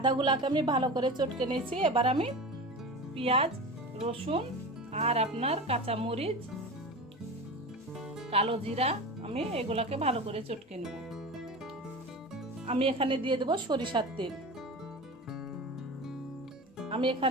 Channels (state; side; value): normal; both; correlation 0.30